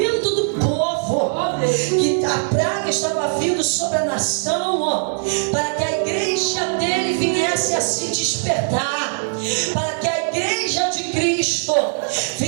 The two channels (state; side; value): silent; left; digital silence